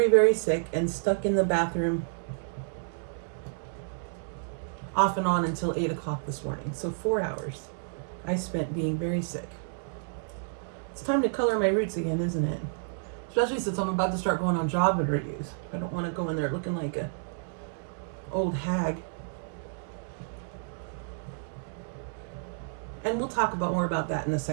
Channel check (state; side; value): silent; left; digital silence